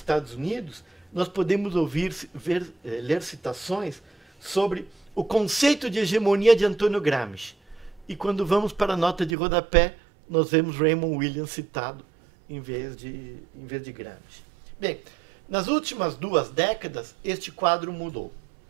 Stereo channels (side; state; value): left; drops out; at 9.3 s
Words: Unidos, nós podemos ler citações sobre o conceito de hegemonia de Antônio Gramsci. E quando vamos para a nota de rodapé, nós vemos Raymond Williams citado em vez de Gramsci. Bem, nas últimas 2 décadas, este quadro mudou.